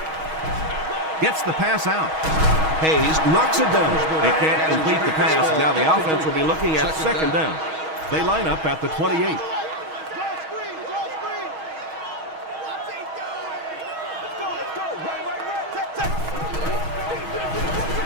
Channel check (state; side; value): late; left; 6.3 ms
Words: Gets the pass out. Hayes knocks it down. They can't complete the pass, and now the offense will be looking at second down. They line up at the 28.